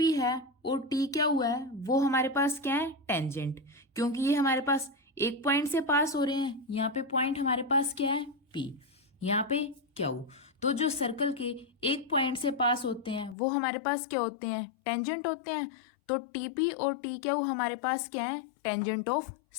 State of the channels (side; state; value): right; drops out; at 13.4 s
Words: है और टी क्यू है वो हमारे पास क्या है, टेंजेंट। क्योंकि ये हमारे पास एक पॉइंट से पास हो रहे हैं, यहाँ पे पॉइंट हमारे पास क्या है, पी। यहाँ पे क्यू। तो जो सर्कल के एक पॉइंट से पास होते हैं वो हमारे पास क्या होते हैं, टेंजेंट होते हैं। तो टीपी और टी क्यू हमारे पास क्या है, टेंजेंट ऑफ